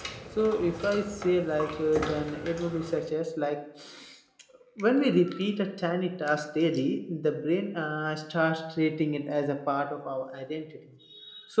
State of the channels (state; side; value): identical; both; correlation 1.00